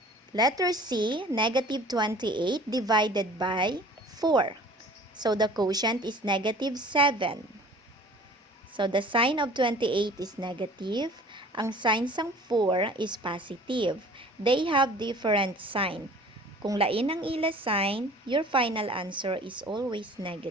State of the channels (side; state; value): both; normal; correlation 0.47